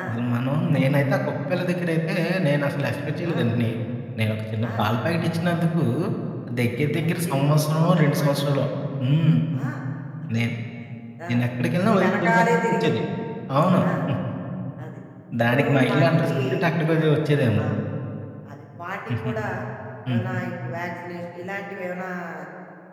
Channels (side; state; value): both; identical; correlation 1.00